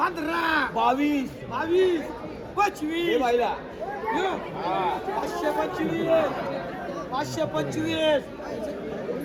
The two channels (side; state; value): both; identical; correlation 1.00